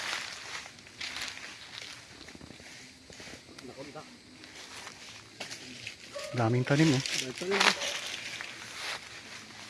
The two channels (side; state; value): both; identical; correlation 1.00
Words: Daming tanim eh.